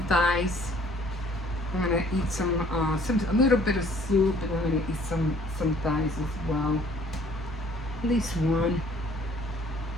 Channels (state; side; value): normal; both; correlation 0.57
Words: thighs. I'm gonna eat a little bit of soup, and I'm gonna eat some thighs as well. At least one.